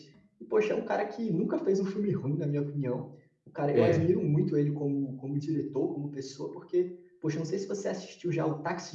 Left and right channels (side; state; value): both; identical; correlation 1.00